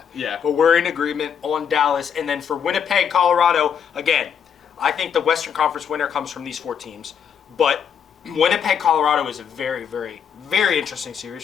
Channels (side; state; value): right; quieter; 7.7 dB